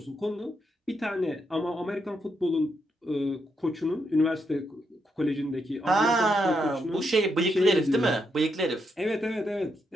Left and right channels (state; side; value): normal; both; correlation 0.80